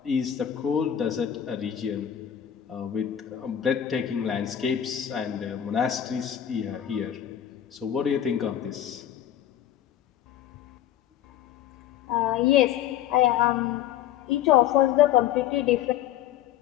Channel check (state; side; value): quieter; right; 10.6 dB